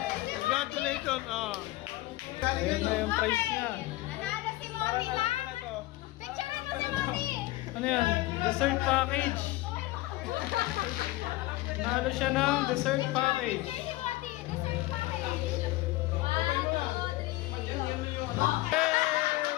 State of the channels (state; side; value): quieter; right; 18.3 dB